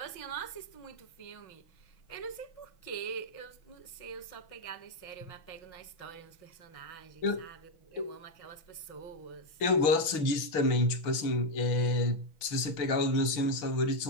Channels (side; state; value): right; late; 6.1 ms